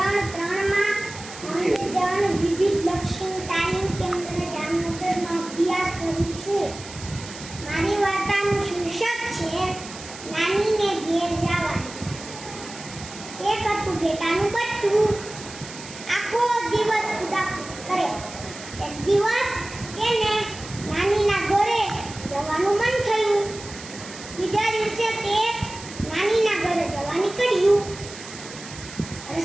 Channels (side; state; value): right; noise; hiss, 14 dB below the sound